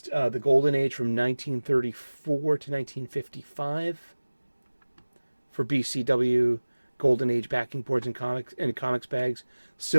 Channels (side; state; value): both; inverted; correlation -1.00